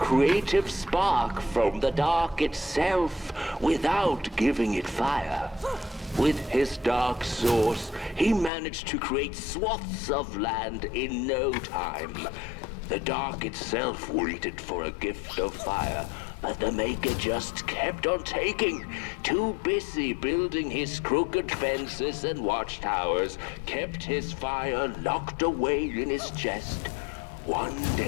spark from the dark itself without giving it fire. With his dark source, he managed to create swaths of land in no time. The dark itself waited for a gift of fire, but the maker just kept on taking. Too busy building his crooked fences and watchtowers, kept his fire locked away in his chest. One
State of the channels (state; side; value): drops out; right; at 8.5 s